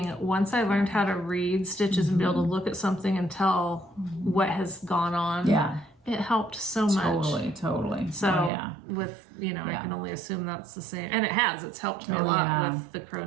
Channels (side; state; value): left; drops out; at 8.5 s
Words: once I learned how to read stitches and be able to look at something and tell what has gone on, it helped so much. Totally. So with, I can only assume that's the same. And it has. It's helped me a lot with the